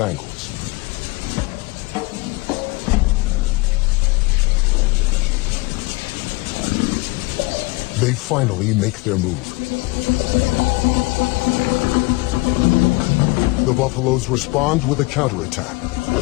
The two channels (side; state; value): right; quieter; 24.0 dB